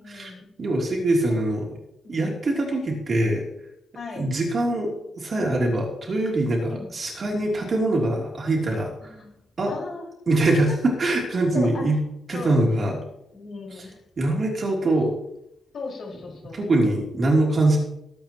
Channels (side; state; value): both; normal; correlation 0.84